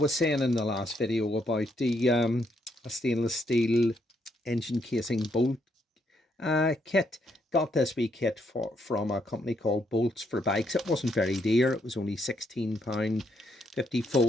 saying in the last video about the a stainless steel engine casing bolt kit. Got this wee kit from a company called Bolts for Bikes. It wasn't very dear. It was only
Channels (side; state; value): both; normal; correlation 0.75